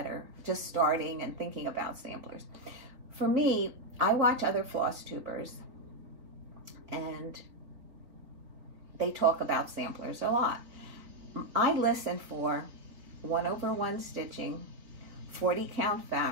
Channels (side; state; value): left; late; 3.9 ms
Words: are just starting and thinking about samplers. For me, I watch other Flosstubers, and they talk about samplers a lot. I listen for 1/1 stitching, 40 count